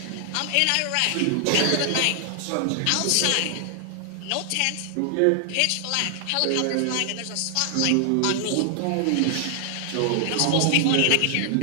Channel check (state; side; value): different; both; correlation 0.00